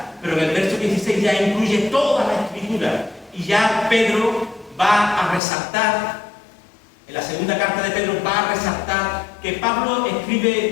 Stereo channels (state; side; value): drops out; right; at 5.4 s